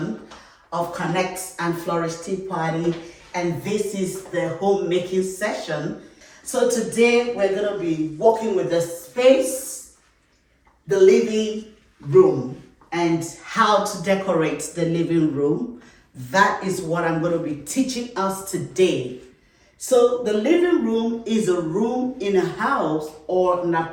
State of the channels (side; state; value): both; identical; correlation 1.00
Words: of Connect and Flourish Tea Party, and this is the homemaking session. So today we're going to be working with the space, the living room, and how to decorate the living room. That is what I'm going to be teaching us today. So the living room is a room in a house or an